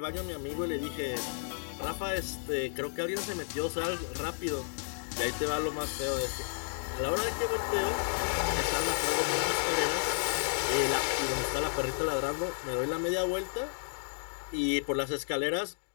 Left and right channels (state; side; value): silent; right; 56 dB below the other